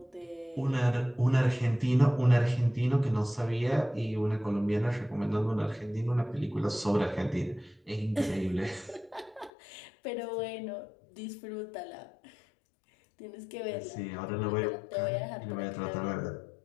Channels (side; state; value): right; drops out; at 9.5 s